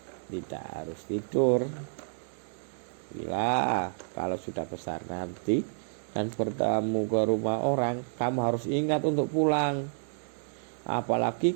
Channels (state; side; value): silent; left; digital silence